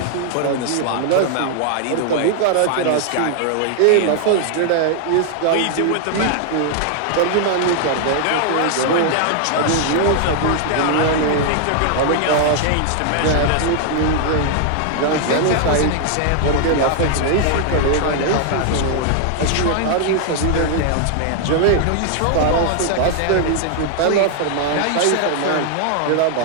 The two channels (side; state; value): both; different; correlation 0.00